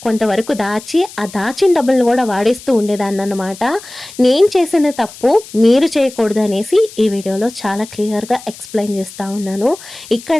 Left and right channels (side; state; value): left; noise; hiss, 17 dB below the sound